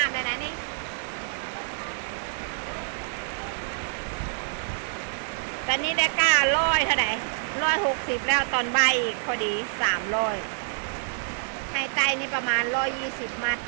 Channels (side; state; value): left; silent; digital silence